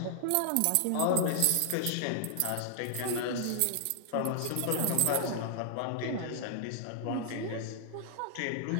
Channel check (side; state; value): both; different; correlation -0.01